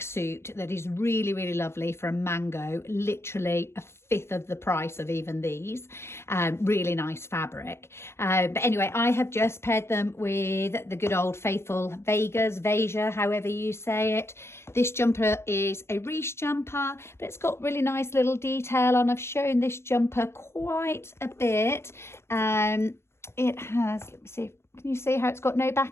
that is really, really lovely from Mango, literally a fifth of the price of even these. Really nice fabric. But anyway, I have just paired them with the good old faithful Veja, however you say it. This jumper is a Reese jumper, but it's got really nice little detail on. I've shown this jumper quite a bit. It has, let me see, can you see how it's got no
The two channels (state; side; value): late; right; 0.12 ms